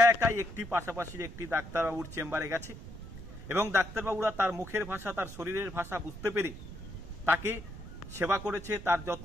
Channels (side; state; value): right; noise; rumble, 13 dB below the sound